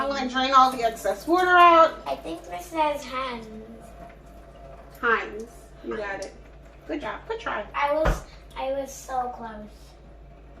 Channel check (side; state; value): both; identical; correlation 1.00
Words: going to drain all the excess water out. I think this says hands. Heinz. You got it. Good job. Good try. I was so close.